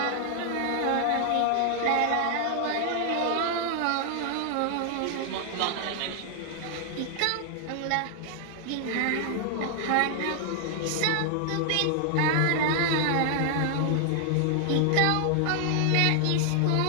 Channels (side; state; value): both; different; correlation 0.00